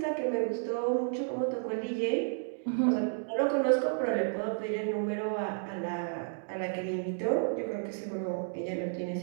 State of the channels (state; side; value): silent; left; digital silence